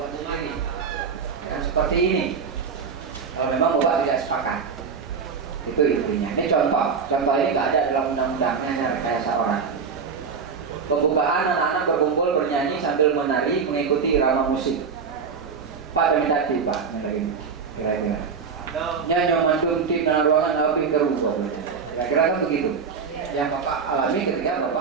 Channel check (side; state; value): left; quieter; 5.8 dB